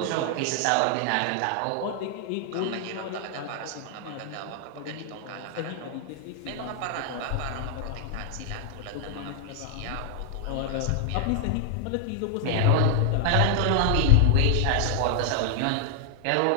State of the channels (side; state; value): both; different; correlation 0.00